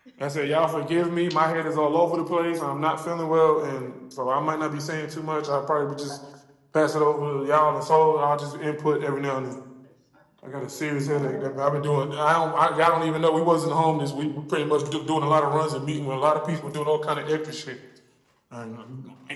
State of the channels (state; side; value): identical; both; correlation 1.00